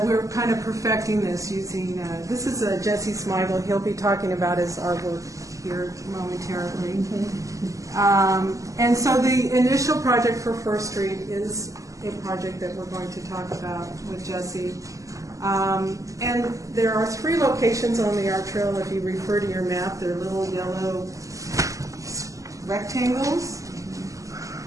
we're kind of perfecting this using, this is Jesse Smigel. He'll be talking about his artwork here momentarily. And so the initial project for First Street is a project that we're going to talk about with Jesse. And there are 3 locations on the art trail. If you refer to your map, they're little yellow rectangles.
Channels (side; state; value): left; late; 0.16 ms